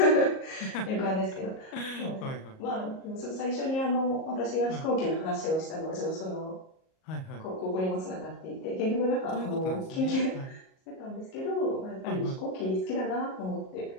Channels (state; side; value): late; right; 38 ms